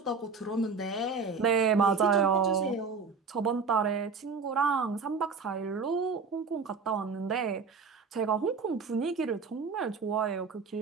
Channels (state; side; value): quieter; left; 5.0 dB